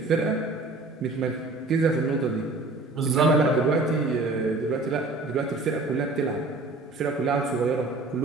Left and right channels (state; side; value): quieter; left; 3.3 dB